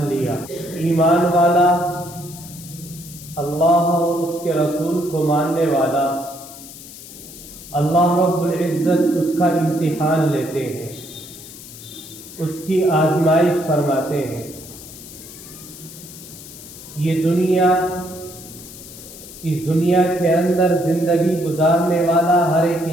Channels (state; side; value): noise; left; hiss, 16 dB below the sound